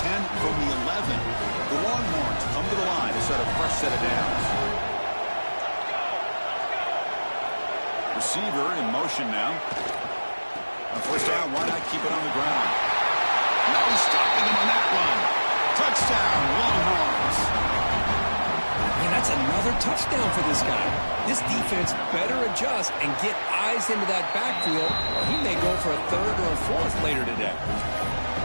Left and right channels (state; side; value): inverted; both; correlation -1.00